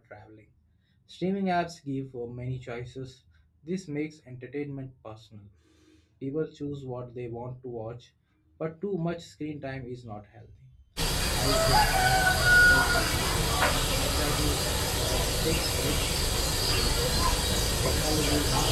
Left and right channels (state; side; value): identical; both; correlation 1.00